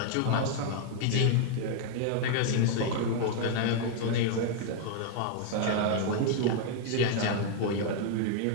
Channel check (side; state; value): both; different; correlation 0.00